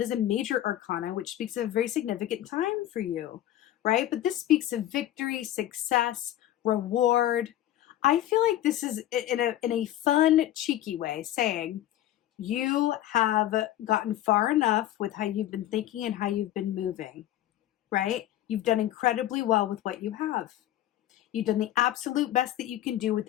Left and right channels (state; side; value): quieter; right; 13.2 dB